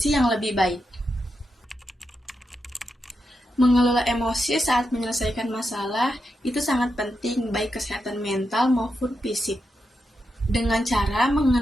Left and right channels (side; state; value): both; normal; correlation 0.86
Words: yang lebih baik. Mengelola emosi saat menyelesaikan masalah itu sangat penting baik kesehatan mental maupun fisik. Dengan cara